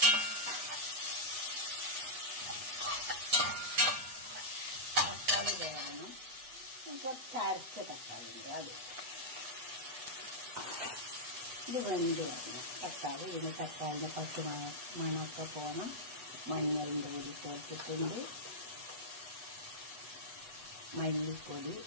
തക്കാളി വേണം. കുറച്ച് അരച്ച തക്കാളി ഉണ്ട്, അത് ഇത് വെന്ത് വരണം. തക്കാളി ഇതിന് തക്കാളിൻ്റെ പച്ച മണമൊക്കെ പോകണം. മഞ്ഞളിൻ്റെ പൊടി ചേർത്തിട്ടുണ്ട്, മല്ലിപ്പൊടി,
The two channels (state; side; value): late; left; 7.9 ms